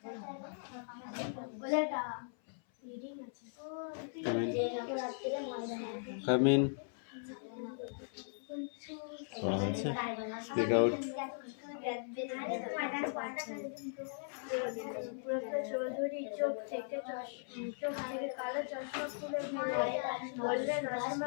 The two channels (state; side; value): silent; right; 52 dB below the other